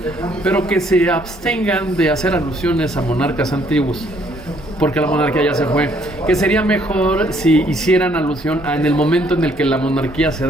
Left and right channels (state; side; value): normal; both; correlation 0.65